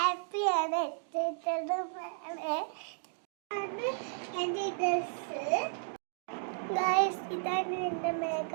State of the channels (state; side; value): silent; left; digital silence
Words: എൻ്റെ ഡ്രസ് ഗൈസ്, ഇതാണ് എൻ്റെ